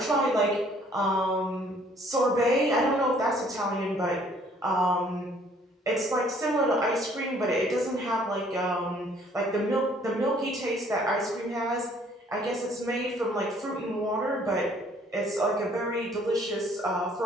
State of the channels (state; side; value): normal; both; correlation 0.60